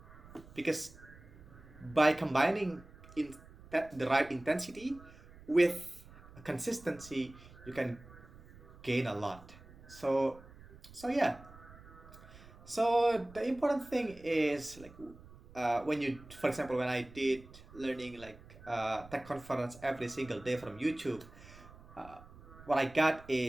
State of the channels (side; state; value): right; noise; rumble, 20 dB below the sound